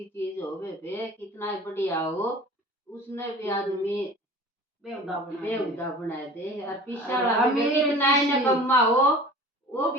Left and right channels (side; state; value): both; normal; correlation 0.42